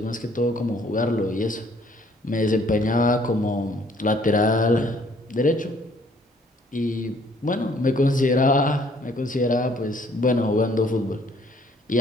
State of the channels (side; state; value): both; normal; correlation 0.61